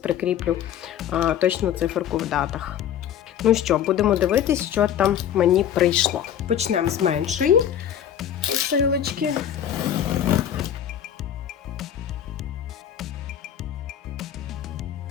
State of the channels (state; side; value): quieter; right; 9.9 dB